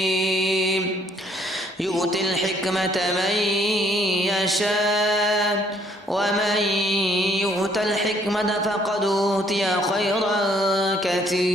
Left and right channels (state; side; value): normal; both; correlation 0.64